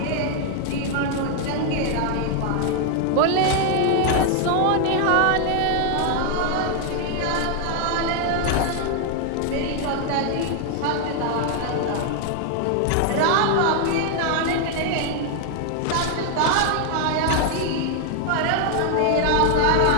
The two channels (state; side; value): different; both; correlation 0.00